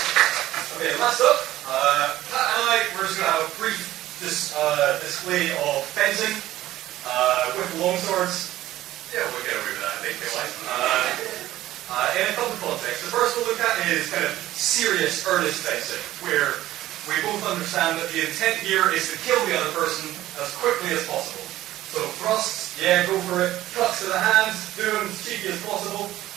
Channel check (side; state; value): left; quieter; 14.8 dB